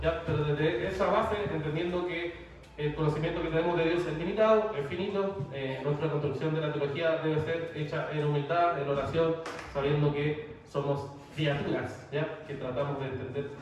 ¿ya? Pero desde esa base, entendiendo que el conocimiento que tenemos de Dios es limitado, es finito, nuestra construcción de la teología debe ser hecha en humildad, en oración, sabiendo que somos criaturas, ¿ya?, que tratamos de entender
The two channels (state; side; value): identical; both; correlation 1.00